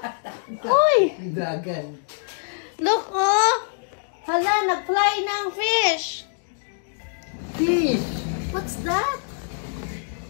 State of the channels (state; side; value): silent; right; digital silence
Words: Uy! Dragon. Look, oh! Hala, nag-fly na ang fish. Fish. What's that?